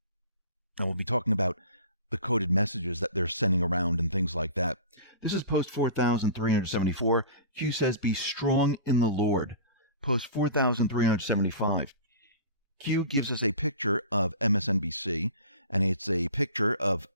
And we'll be talking about the coded messages that they're sending around and things like that. This is post 4,374. Q says, be strong in the Lord. Post 4,375. Q gives us a picture of MSNBC, and it's a picture of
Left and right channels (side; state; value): both; inverted; correlation -0.38